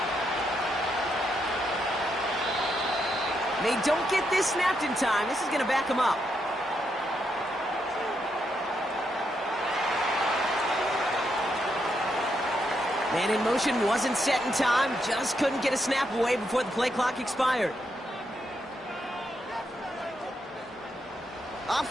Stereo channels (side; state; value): both; normal; correlation 0.80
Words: They don't get this snapped in time. This is going to back them up. Man in motion wasn't set in time. Just couldn't get a snap away before the play clock expired.